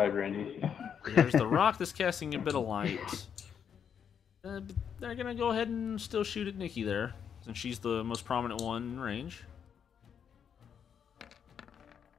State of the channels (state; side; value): quieter; right; 7.8 dB